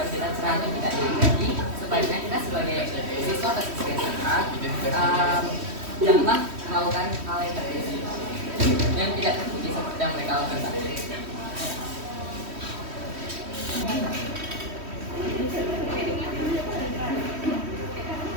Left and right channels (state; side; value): late; left; 3.1 ms